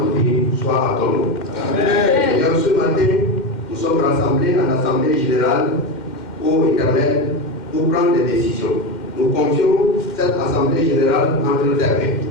soient à ton nom. Seigneur, ce matin, nous sommes rassemblés en Assemblée Générale, ô Éternel, pour prendre des décisions. Nous confions cette Assemblée Générale entre tes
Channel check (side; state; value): right; late; 2.1 ms